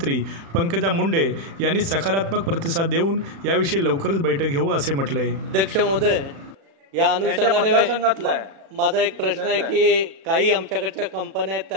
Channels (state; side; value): late; left; 36 ms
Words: पंकजा मुंडे यांनी सकारात्मक प्रतिसाद देऊन याविषयी लवकरच बैठक घेऊ असे म्हटले। अध्यक्ष महोदय, या अनुषंगाने माझा एक प्रश्न आहे की काही आमच्याकडच्या कंपन्या आहेत